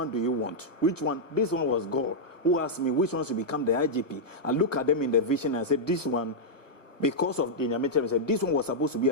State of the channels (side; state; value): right; late; 1.0 ms